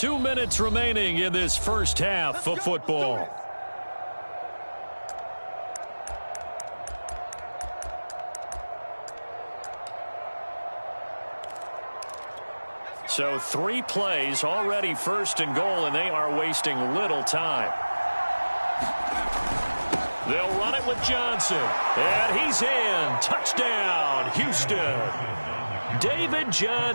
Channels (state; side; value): inverted; both; correlation -1.00